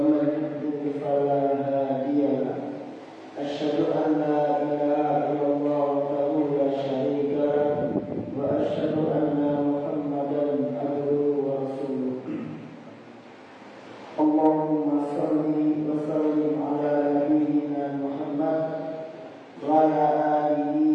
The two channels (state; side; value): identical; both; correlation 1.00